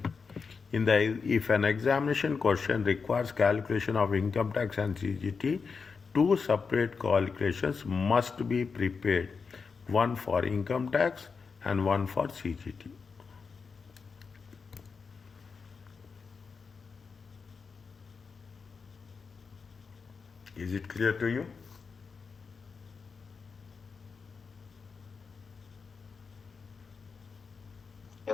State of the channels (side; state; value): right; quieter; 5.2 dB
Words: If an examination question requires calculation of income tax and CGT, two separate calculations must be prepared, one for income tax and one for CGT. Is it clear to you?